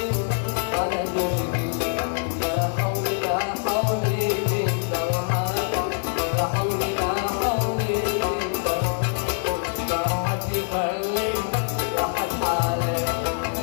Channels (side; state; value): right; silent; digital silence